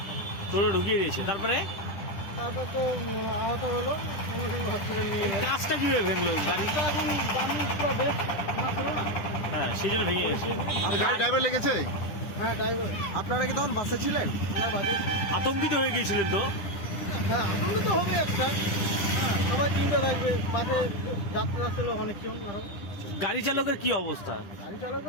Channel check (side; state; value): right; late; 9.9 ms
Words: টোটো ঢুকিয়ে দিয়েছে। তারপরে তো আহত হলো, সঙ্গে সঙ্গে হসপিটালে নিয়ে গেল। কাজটা কিভাবে ভেঙলো? গাড়িটা এখন দামি পুরো বেশ মাত্র না। হ্যাঁ, সেই জন্য ভেঙে গেছে। গাড়ি ড্রাইভার লেগেছে? হ্যাঁ, ড্রাইভার। আপনারা কি তখন বাসে ছিলেন? না, বাজে। আতঙ্কিত হয়ে গিয়েছিলেন তো? হ্যাঁ, আনন্দ তো হবে একটা। হ্যাঁ, সবাই চিন্তা থাকবে। বাসে যাত্রা ছিল অনেকজন আরো। গাড়ি চালকের কি অবস্থা? গাড়ি